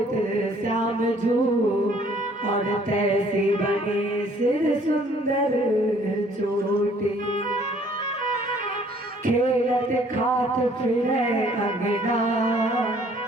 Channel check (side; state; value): both; normal; correlation 0.59